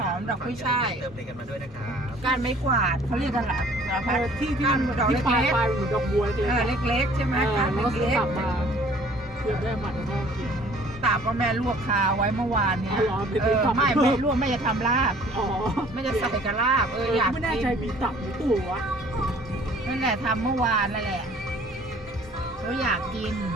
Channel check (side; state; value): both; normal; correlation 0.54